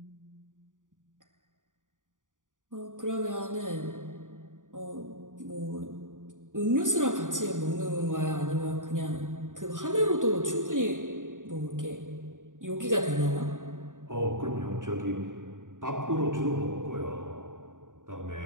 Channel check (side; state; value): left; late; 0.88 ms